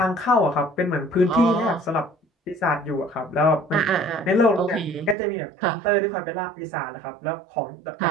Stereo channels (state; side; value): drops out; left; at 5.2 s